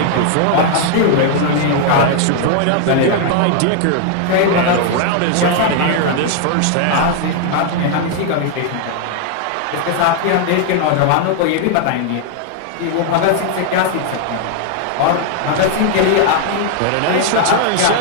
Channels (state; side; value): different; both; correlation 0.00